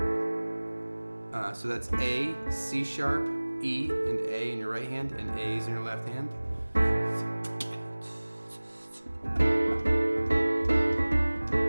So that's A, C sharp, E, and A in your right hand, and A's in your left hand.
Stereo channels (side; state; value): both; inverted; correlation -1.00